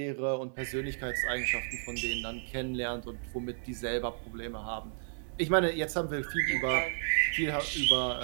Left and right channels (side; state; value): left; silent; 56 dB below the other